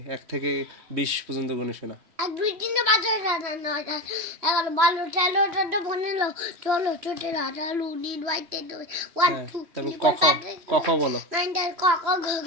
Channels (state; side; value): late; left; 3.1 ms